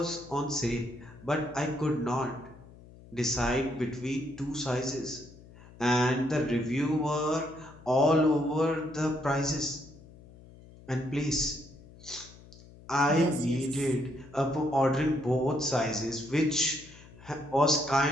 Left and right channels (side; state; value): left; noise; hum, 21 dB below the sound